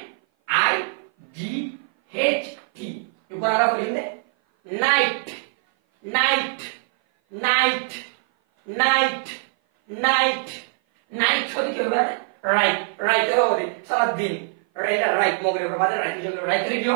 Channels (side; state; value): left; silent; 56 dB below the other